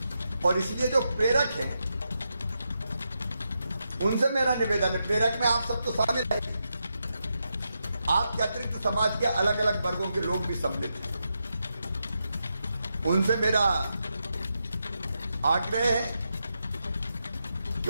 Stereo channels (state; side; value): inverted; both; correlation -0.85